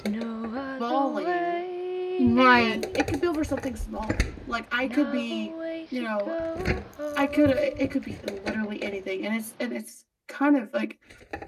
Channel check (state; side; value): identical; both; correlation 1.00